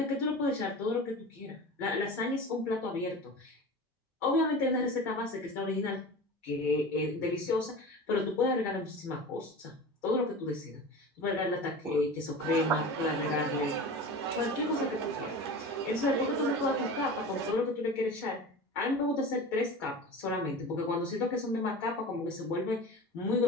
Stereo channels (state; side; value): normal; both; correlation 0.33